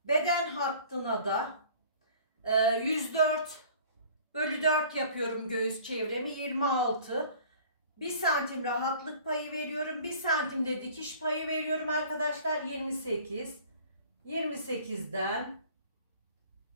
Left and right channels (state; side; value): inverted; both; correlation -0.49